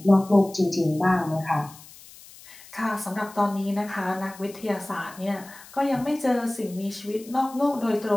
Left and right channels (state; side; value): noise; left; hiss, 20 dB below the sound